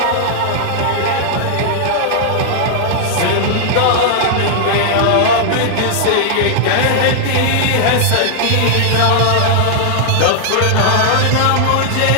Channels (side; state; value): both; different; correlation -0.01